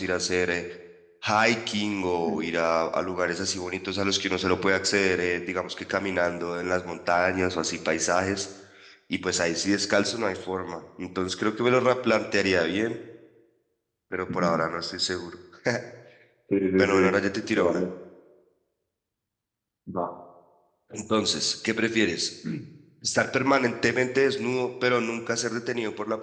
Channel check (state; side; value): identical; both; correlation 1.00